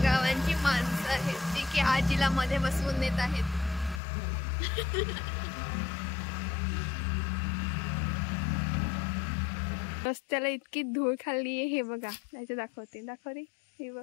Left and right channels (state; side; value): drops out; right; at 4.0 s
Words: गावांची माणसं आहेत जी की आजीला मध्ये बसवून देत आहेत. रस्त्याला इतकी धूळ खाल्ली आहे. हे बघा, त्याचे दाखव रे. हे